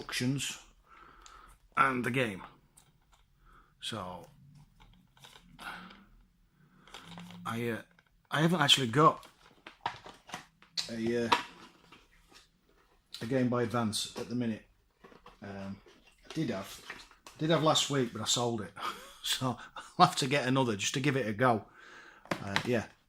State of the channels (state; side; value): identical; both; correlation 1.00